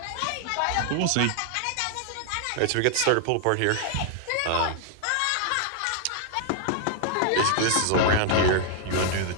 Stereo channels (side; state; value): both; different; correlation 0.00